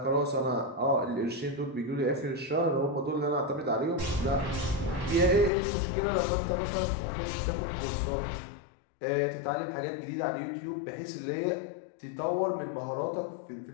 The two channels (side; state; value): right; drops out; at 5.5 s